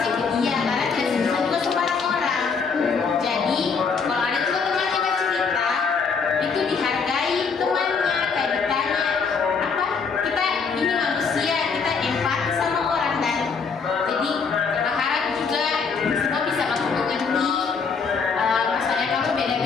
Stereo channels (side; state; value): right; quieter; 5.4 dB